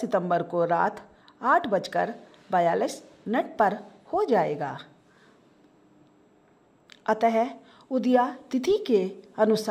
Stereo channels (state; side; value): identical; both; correlation 1.00